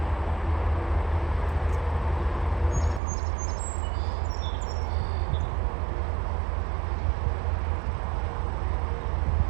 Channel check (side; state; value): left; drops out; at 3.0 s